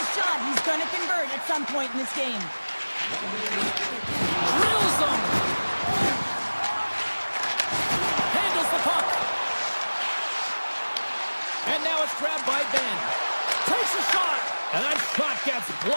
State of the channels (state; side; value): inverted; both; correlation -1.00